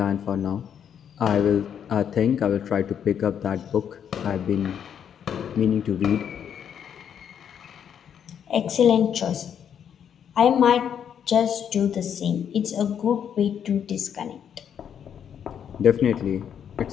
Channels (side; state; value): right; quieter; 8.5 dB